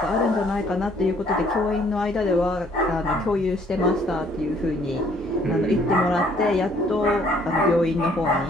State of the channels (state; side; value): normal; both; correlation 0.62